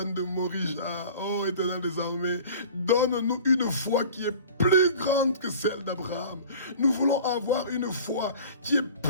de Morija. Oh, éternel des armées, donne-nous une foi qui est plus grande que celle d'Abraham. Nous voulons avoir une foi qui est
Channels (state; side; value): inverted; both; correlation -0.43